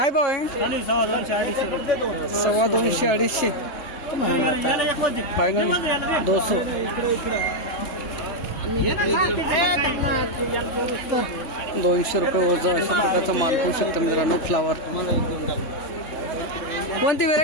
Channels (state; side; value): late; right; 3.3 ms